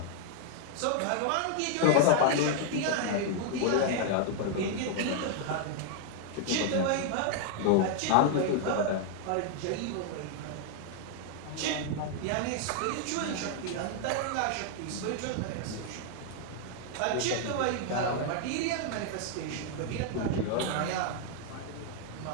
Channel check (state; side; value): different; both; correlation 0.00